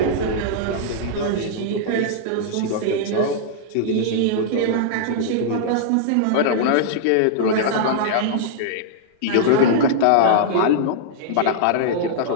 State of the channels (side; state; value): both; different; correlation -0.02